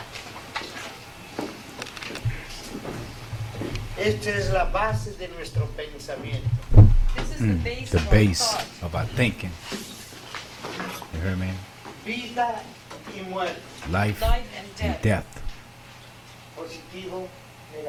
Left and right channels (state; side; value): identical; both; correlation 1.00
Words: Esta es la base de nuestro pensamiento. This is the base The of our base thought. of our thinking. You heard me? Vida y muerte, Life Life and and death, death. positivo,